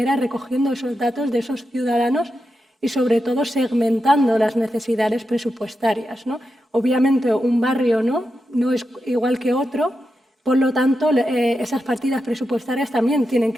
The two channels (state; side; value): normal; both; correlation 0.88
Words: es recogiendo esos datos de esos ciudadanos y sobre todo segmentando las necesidades presupuestarias, ¿no? Obviamente un barrio no es igual que otro, por lo tanto esas partidas presupuestarias también tienen